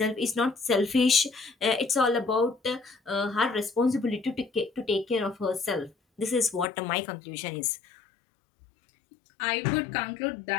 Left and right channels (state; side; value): drops out; right; at 6.7 s